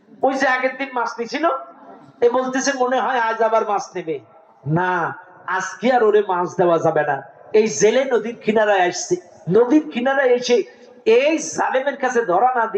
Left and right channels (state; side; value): identical; both; correlation 1.00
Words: ওই যে আগের দিন মাছ নিছিল, এ বলতেছে মনে হয় আজ আবার মাছ নেবে না, আজকে আর ওরে মাছ দেওয়া যাবে না। এই জেলে নদীর কিনারায় আসছে, নদীর কিনারায় এসে এই জালেমের কাছে ধরা না